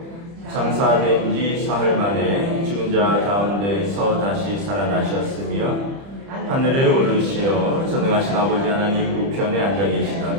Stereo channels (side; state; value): left; late; 30 ms